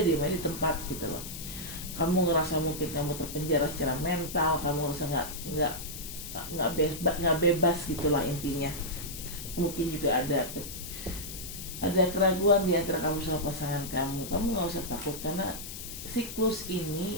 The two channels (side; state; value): left; noise; hiss, 10 dB below the sound